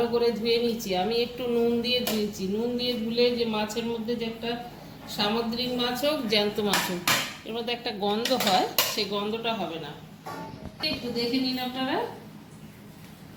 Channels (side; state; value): both; identical; correlation 1.00